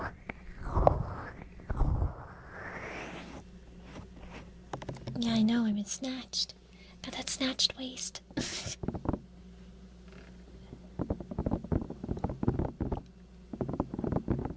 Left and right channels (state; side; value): identical; both; correlation 1.00